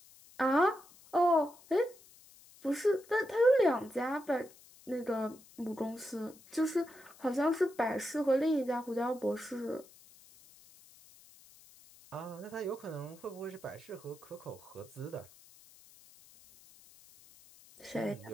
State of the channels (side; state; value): left; noise; hiss, 24 dB below the sound